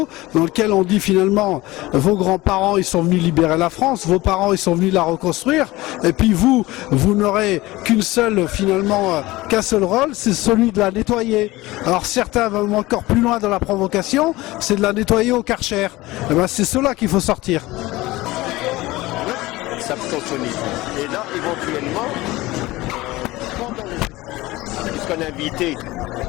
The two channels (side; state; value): right; quieter; 19.3 dB